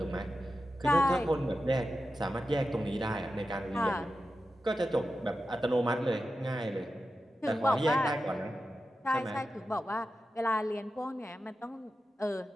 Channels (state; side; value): normal; both; correlation 0.91